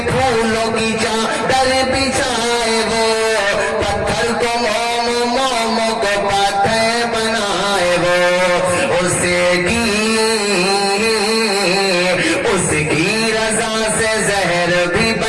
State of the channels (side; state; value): both; identical; correlation 1.00